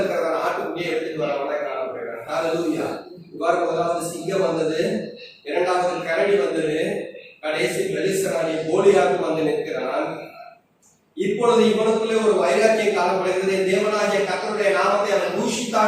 ஆட்டுக்குட்டியை எடுத்துட்டு வரவங்க காணப்படுகிறாங்க. ஹல்லேலூயா. இவ்வாறு முதலாவது சிங்கம் வந்தது, இரண்டாவது கரடி வந்தது, கடைசி பெலிஸ்தனாகிய கோலியாத்து வந்து நிற்கிறான். இப்பொழுது இவனுக்குள்ளே ஒரு வைராக்கியம் காணப்படுகிறது. தேவனாகிய கர்த்தருடைய நாமத்தை அவன்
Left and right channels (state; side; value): identical; both; correlation 1.00